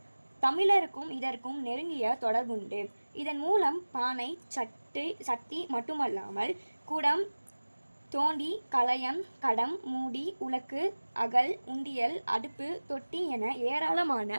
தமிழருக்கும் இதற்கும் நெருங்கிய தொடர்புண்டு. இதன் மூலம் பானை, சட்டி மட்டுமல்லாமல் குடம், தோண்டி, கலயம், கடம், மூடி, உலக்கு, அகல், உண்டியல், அடுப்பு, தொட்டி என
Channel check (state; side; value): inverted; both; correlation -1.00